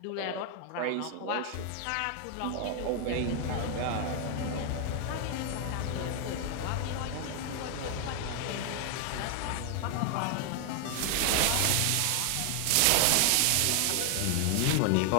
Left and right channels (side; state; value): both; different; correlation 0.00